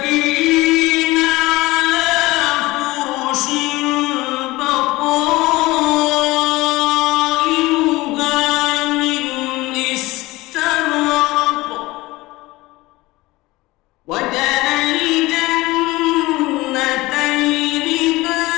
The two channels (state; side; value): quieter; right; 20.1 dB